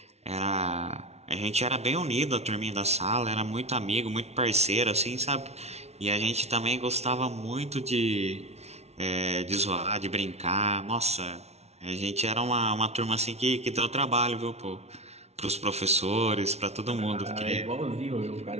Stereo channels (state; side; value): late; left; 0.31 ms